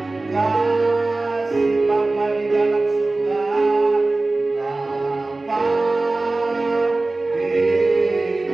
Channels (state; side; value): quieter; left; 3.2 dB